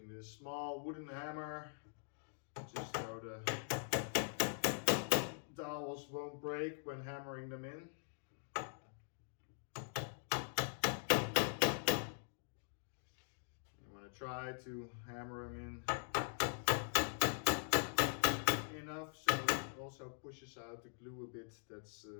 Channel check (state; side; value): silent; right; digital silence